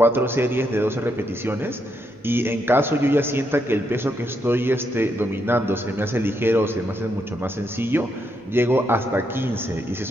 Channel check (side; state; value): both; normal; correlation 0.79